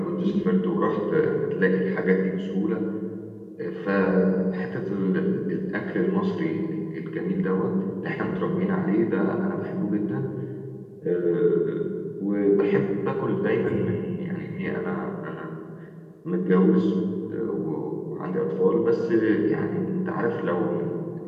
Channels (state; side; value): identical; both; correlation 1.00